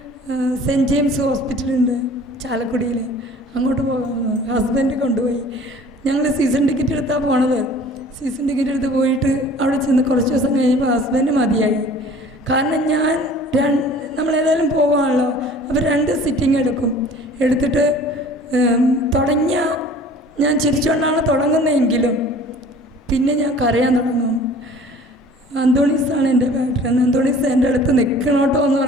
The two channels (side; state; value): both; normal; correlation 0.48